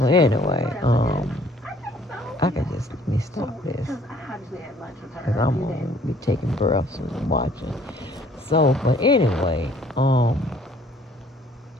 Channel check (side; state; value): both; normal; correlation 0.58